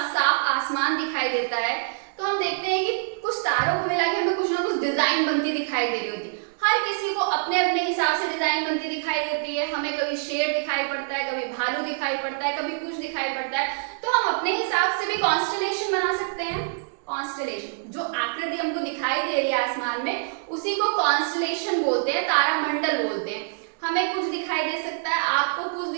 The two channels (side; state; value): left; silent; digital silence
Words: साफ आसमान दिखाई देता है, तो हम देखते हैं कि कुछ तारों को मिला के हमें कुछ ना कुछ डिजाइन बनती दिखाई दे रही होती है। हर किसी को अपने अपने हिसाब से डिजाइन बनती दिखाई देती है। हमें कभी शेर दिखाई पड़ता है, कभी भालू दिखाई पड़ता है, कभी कुछ दिखाई पड़ता है। तो हम अपने हिसाब से भी कॉन्स्टेलेशन बना सकते हैं। कॉन्स्टेलेशन, जो आकृति हमको दिखाई दे रही है आसमान में, उसी को कॉन्स्टेलेशन बोलते हैं, तारामंडल बोलते हैं। हमें कुछ दिखाई दे सकता है, आपको कुछ